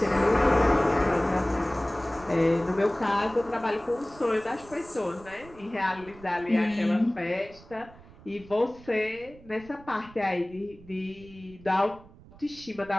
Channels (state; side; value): noise; right; rumble, 21 dB below the sound